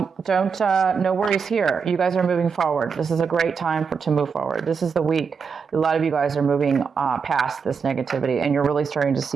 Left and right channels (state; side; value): quieter; left; 5.9 dB